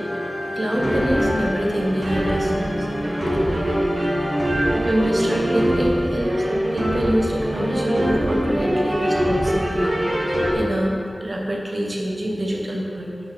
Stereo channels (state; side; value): normal; both; correlation 0.97